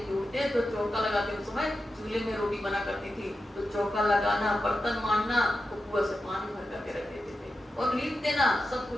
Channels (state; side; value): normal; both; correlation 0.90